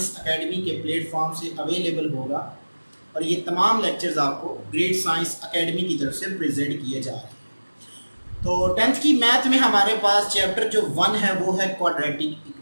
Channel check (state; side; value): inverted; both; correlation -1.00